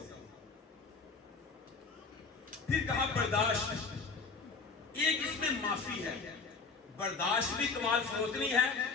پھر کہا برداشت، ایک اس میں معافی ہے، برداشت بھی کمال فروتنی ہے۔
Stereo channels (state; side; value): quieter; right; 4.7 dB